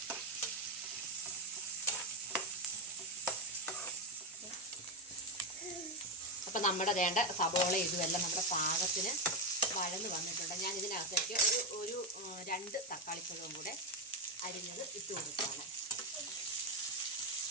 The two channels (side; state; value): both; normal; correlation 0.09